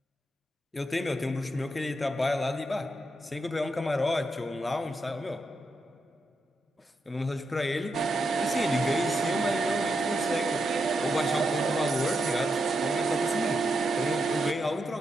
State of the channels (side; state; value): both; normal; correlation 0.84